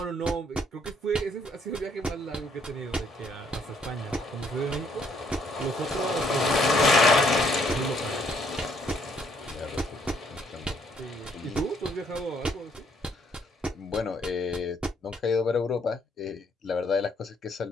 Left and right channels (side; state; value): both; normal; correlation 0.67